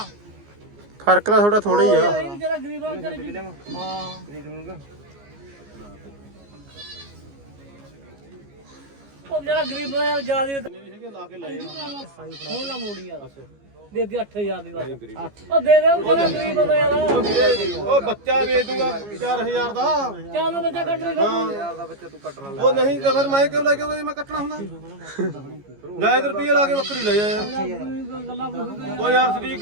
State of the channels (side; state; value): left; late; 15 ms